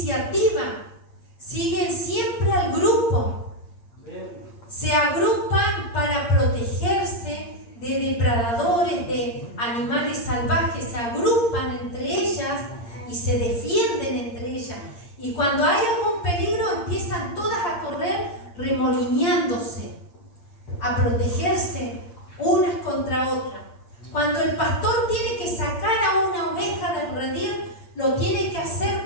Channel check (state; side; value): late; right; 8.6 ms